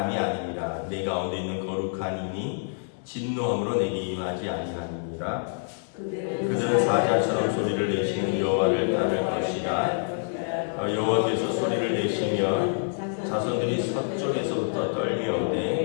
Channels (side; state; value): right; silent; digital silence